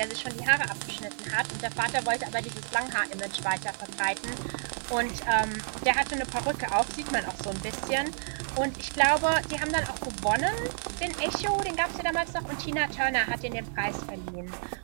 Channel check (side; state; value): left; silent; digital silence